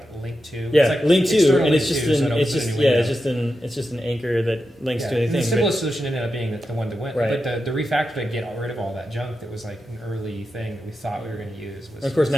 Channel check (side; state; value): both; normal; correlation 0.89